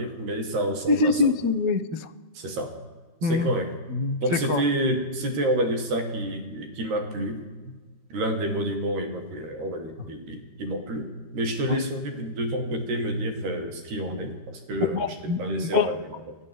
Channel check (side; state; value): left; late; 13 ms